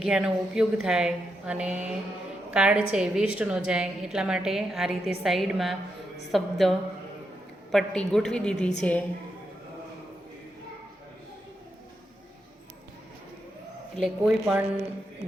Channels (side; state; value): both; normal; correlation 0.84